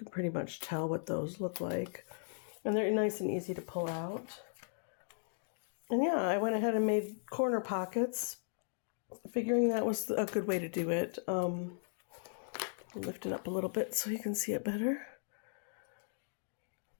pretty much tell what those look like. And they're nice and easy to pull out. And yeah, I went ahead and made corner pockets, figuring that was a good way to do it. Lift it up a little bit so you can see it better.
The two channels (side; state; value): right; silent; digital silence